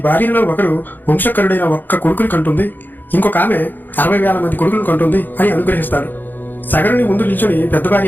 భార్యలలో ఒకరు వంశకరుడైన ఒక్క కొడుకుని కంటుంది, ఇంకొక ఆమె 60,000 మంది కొడుకులను కంటుంది అని అనుగ్రహిస్తాడు. సగరుని ముందు నిల్చొని పెద్ద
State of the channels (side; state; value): right; late; 0.089 ms